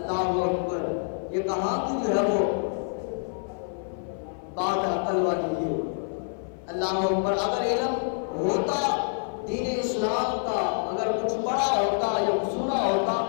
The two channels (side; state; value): right; silent; 60 dB below the other